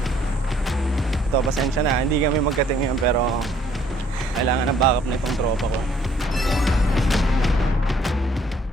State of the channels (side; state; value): both; normal; correlation 0.63